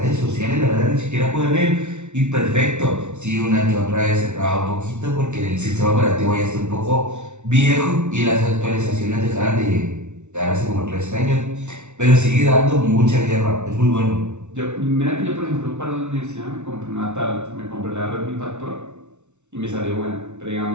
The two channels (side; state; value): left; late; 0.83 ms